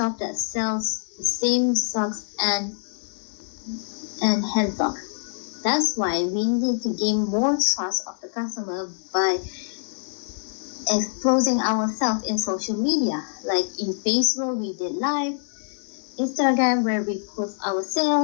that sells the same socks and hand sock. That's why we need to gain more trust of the customer by exposing ourselves in social media. Like in Facebook, we did live, Instagram, where we post our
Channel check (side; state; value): right; silent; 62 dB below the other